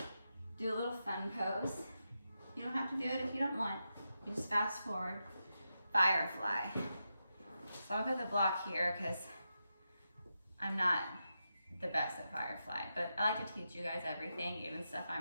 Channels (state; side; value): inverted; both; correlation -0.87